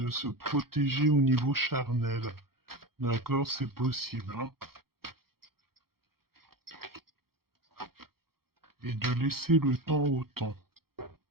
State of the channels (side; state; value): left; late; 0.94 ms